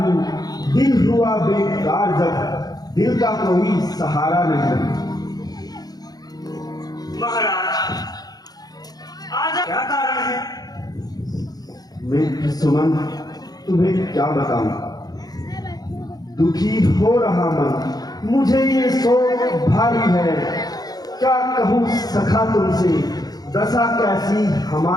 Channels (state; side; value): late; right; 0.19 ms